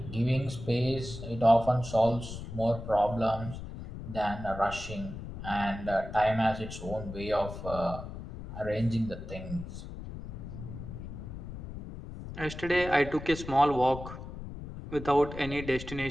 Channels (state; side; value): noise; left; rumble, 10 dB below the sound